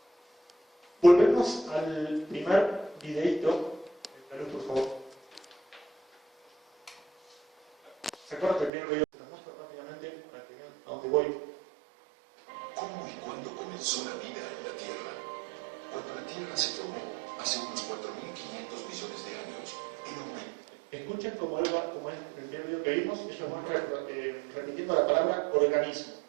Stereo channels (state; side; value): drops out; left; at 8.7 s